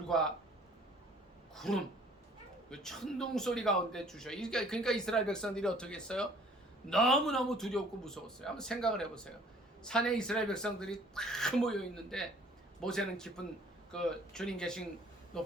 구름, 천둥 소리 가운데 주셔요. 그러니까 이스라엘 백성들이 어떻게 했어요? 너무너무 두렵고 무서웠어요. 한번 생각을 해보세요. 산에 이스라엘 백성들이 다 모여 있는데 모세는 깊은 그 주님 계신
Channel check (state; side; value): normal; both; correlation 0.55